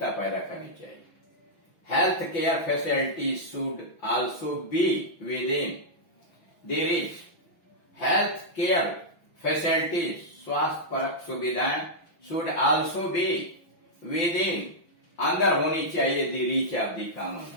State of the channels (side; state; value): right; late; 5.9 ms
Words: पैदा करनी चाहिए। Health care facilities should also be with in the reach. Health care facilities, स्वास्थ्य परक सुविधाएं, should also be with in, अंदर होनी चाहिए, the reach of the common,